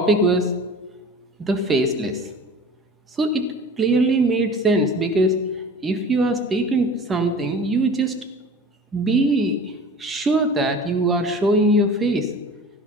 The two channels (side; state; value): both; normal; correlation 0.41